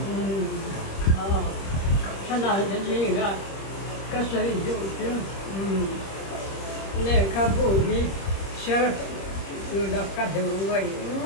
Chana te zinga ka sai du chu. Le ka bu hi sher yu da ka du ngoi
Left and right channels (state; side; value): late; right; 26 ms